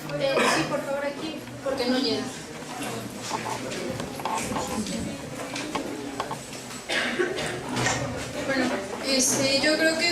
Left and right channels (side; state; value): both; identical; correlation 1.00